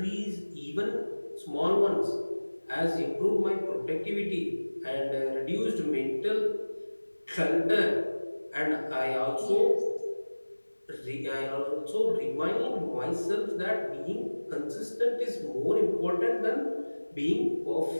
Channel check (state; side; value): inverted; both; correlation -1.00